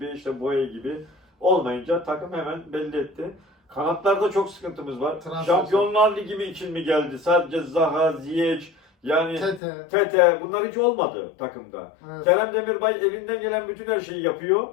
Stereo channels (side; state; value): right; drops out; at 9.6 s